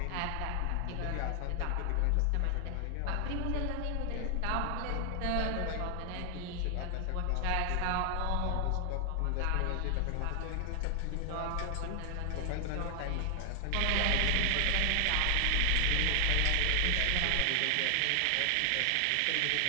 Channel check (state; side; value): different; both; correlation 0.00